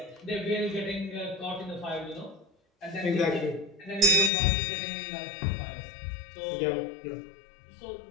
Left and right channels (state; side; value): drops out; right; at 4.3 s